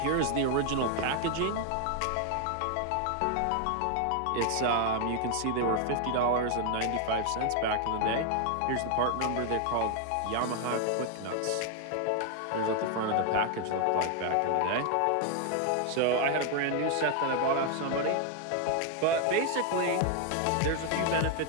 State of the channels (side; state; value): both; different; correlation 0.00